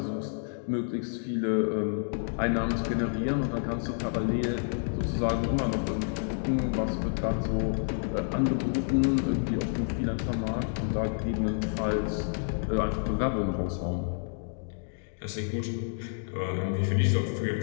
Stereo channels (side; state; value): right; silent; digital silence